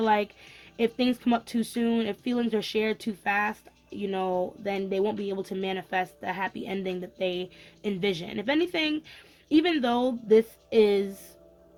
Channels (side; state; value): both; identical; correlation 1.00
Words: like if things come up too soon, if feelings are shared too fast, then they won't be able to manifest the happy ending that they envision. If anything, even though this is,